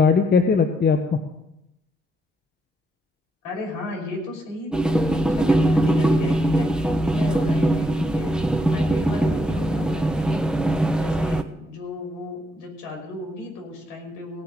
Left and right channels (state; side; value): normal; both; correlation 0.76